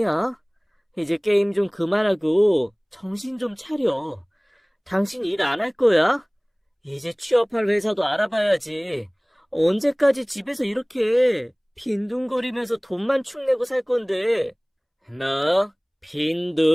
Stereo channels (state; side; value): identical; both; correlation 1.00